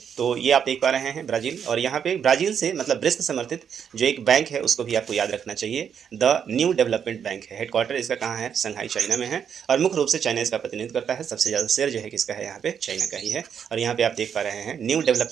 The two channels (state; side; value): quieter; left; 7.8 dB